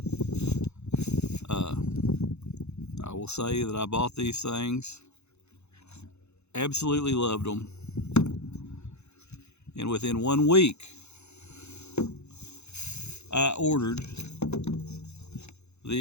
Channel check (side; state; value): right; late; 0.81 ms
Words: I will say that I bought these things, absolutely loved them, and within 1 week, I ordered